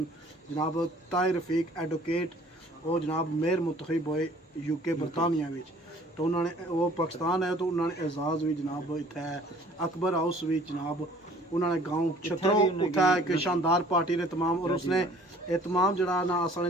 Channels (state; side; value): normal; both; correlation 0.54